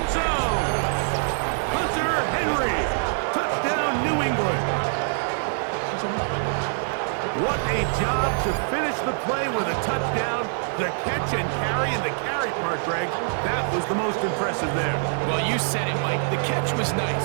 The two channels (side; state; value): left; silent; 62 dB below the other